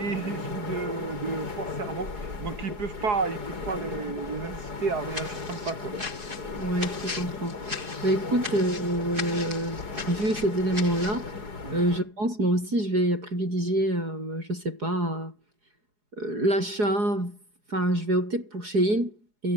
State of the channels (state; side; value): late; left; 4.8 ms